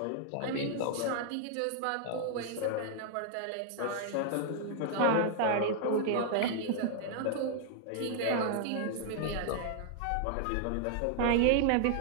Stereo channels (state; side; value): different; both; correlation 0.00